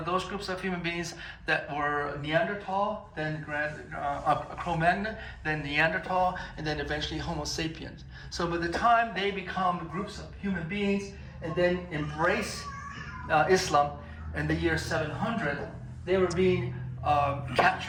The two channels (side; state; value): both; identical; correlation 1.00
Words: those groups of human beings that were Neanderthal, then Cro-Magnon, then Neanderthal, and then eventually Homo sapiens. So by the time they become groups of human beings and then embrace Islam in the year 700, they were being